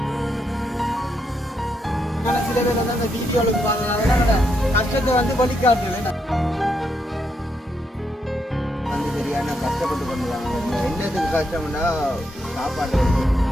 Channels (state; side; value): normal; both; correlation 0.79